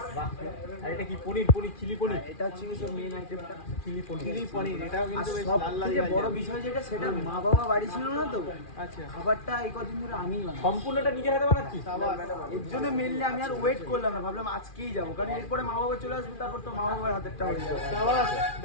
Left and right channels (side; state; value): right; late; 2.4 ms